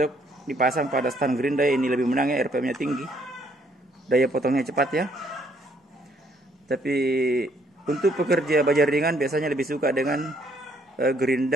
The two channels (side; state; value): both; normal; correlation 0.66